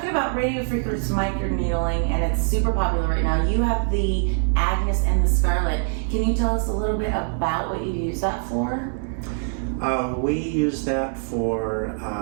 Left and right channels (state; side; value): silent; left; 63 dB below the other